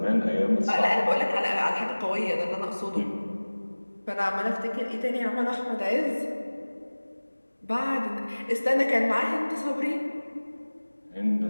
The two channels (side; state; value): both; inverted; correlation -1.00